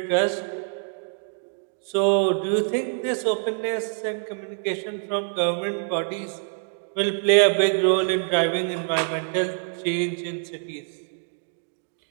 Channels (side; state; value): left; silent; 61 dB below the other